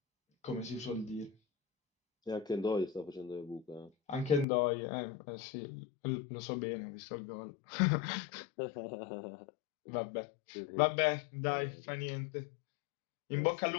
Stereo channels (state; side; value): drops out; right; at 4.5 s